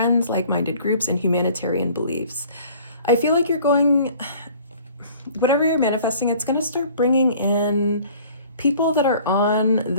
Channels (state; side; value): inverted; both; correlation -0.51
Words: like-minded groups, and humanitarian beliefs. I feel like you're going, whatever you're manifesting, it's going to start bringing in people that are on